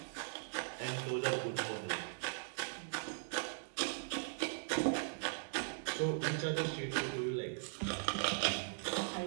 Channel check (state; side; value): silent; left; digital silence